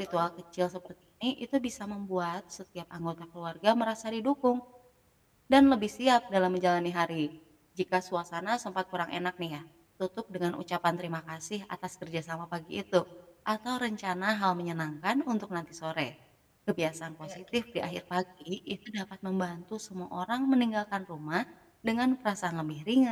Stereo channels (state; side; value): identical; both; correlation 1.00